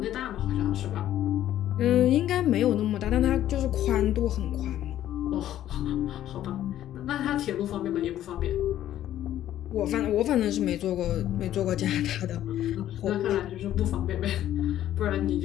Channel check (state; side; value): quieter; right; 12.2 dB